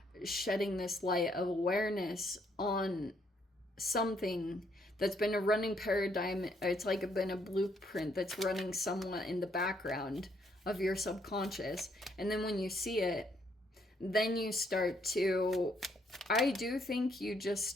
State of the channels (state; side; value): normal; both; correlation 0.71